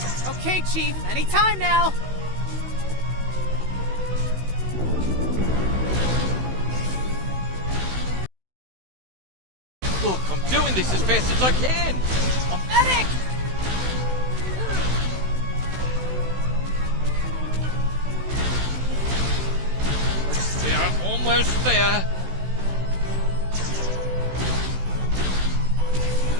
Okay, Chief. Anytime now. Look, I'm doing this as fast as I can. Medic! Almost there.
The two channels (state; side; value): late; left; 16 ms